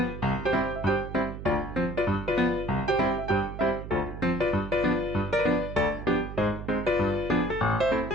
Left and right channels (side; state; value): right; noise; hum, 9 dB below the sound